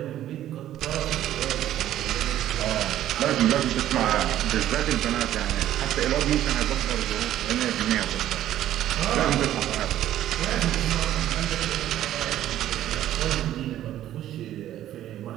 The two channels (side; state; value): left; quieter; 12.5 dB